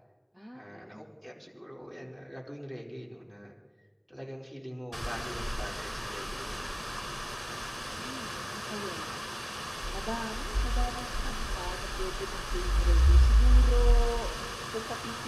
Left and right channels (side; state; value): both; identical; correlation 1.00